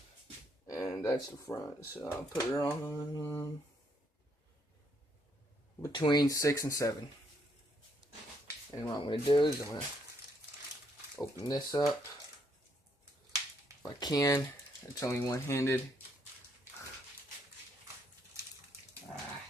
and that's the front. So I'll put it on between 6 and 7. And what I'm going to do is I'm going to open this up if I can. It's only one-handed.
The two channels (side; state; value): both; normal; correlation 0.72